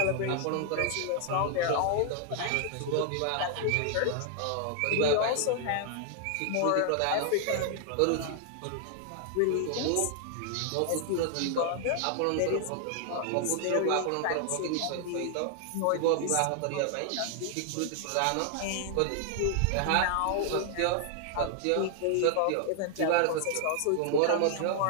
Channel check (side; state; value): both; different; correlation 0.00